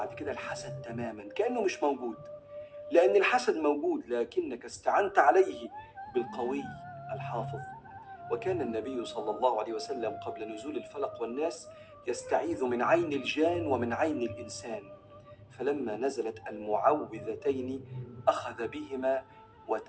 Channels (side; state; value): both; identical; correlation 1.00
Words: كده الحسد تماما، كأنه مش موجود، لأن الحسد موجود لكنك استعنت عليه بالقوي الحافظ. وكان النبي صلى الله عليه وسلم قبل نزول الفلق والناس يستعيذ من عين الجان ومن عين الإنسان، فلما نزلت المعوذتين أخذ بهما